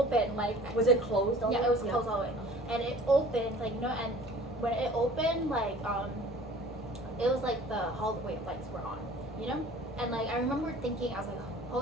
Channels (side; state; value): both; normal; correlation 0.47